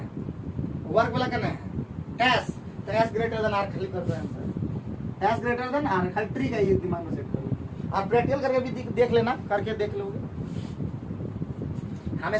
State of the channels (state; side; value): identical; both; correlation 1.00